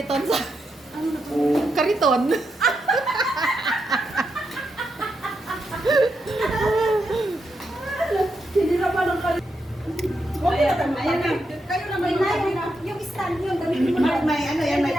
sa... Kariton. Sinira pa ng kali. Ayan na. Kayo na may yung stand yun. Gamitin mo na. May ano yan, may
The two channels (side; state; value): both; normal; correlation 0.84